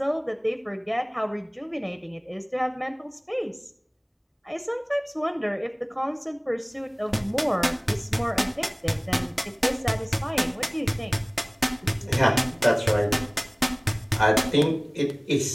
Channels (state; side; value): identical; both; correlation 1.00